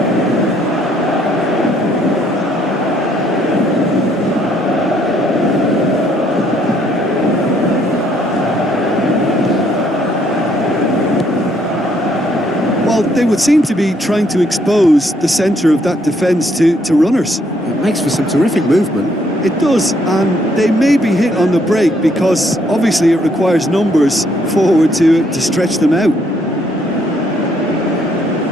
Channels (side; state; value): both; normal; correlation 0.69